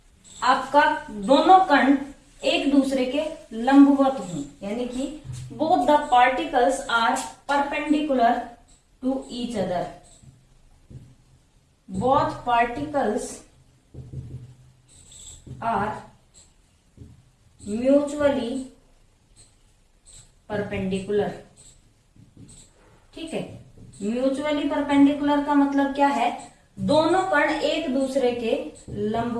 आपका दोनों कण एक दूसरे के लंबवत हों, यानी कि both the particles are perpendicular to each other. Both particles are mutually perpendicular. ठीक है, म्यूचुअली परपेंडिकुलर का मतलब क्या है? दोनों कण एक दूसरे के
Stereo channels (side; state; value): both; identical; correlation 1.00